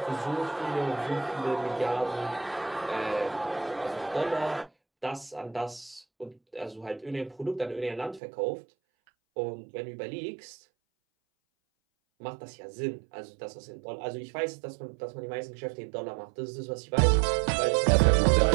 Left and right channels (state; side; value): drops out; left; at 8.2 s